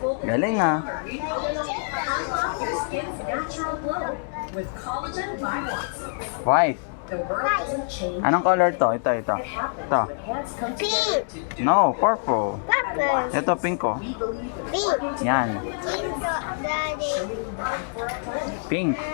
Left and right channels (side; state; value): right; silent; digital silence